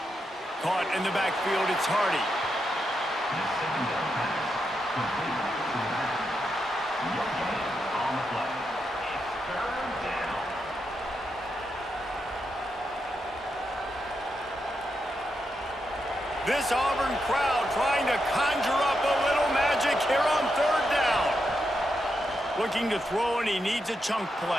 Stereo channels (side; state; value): both; normal; correlation 0.84